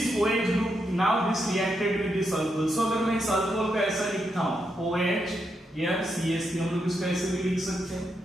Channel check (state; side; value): normal; both; correlation 0.82